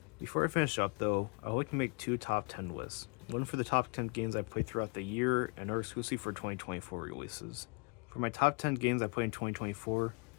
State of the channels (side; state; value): right; quieter; 32.8 dB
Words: Before I finish up though, I would like to make 2 top 10 lists. One for the top 10 games I played throughout the year, and another exclusively for 2024 releases. For my top 10 games I played in 2024,